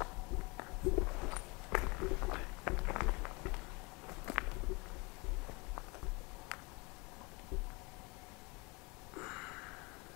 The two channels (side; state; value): right; quieter; 27.9 dB